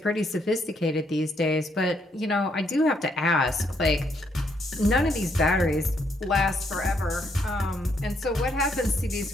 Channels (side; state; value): both; normal; correlation 0.73